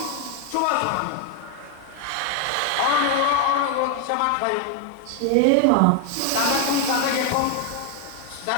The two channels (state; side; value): different; both; correlation 0.01